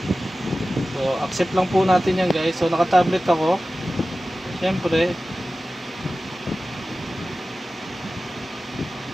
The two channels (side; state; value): both; normal; correlation 0.95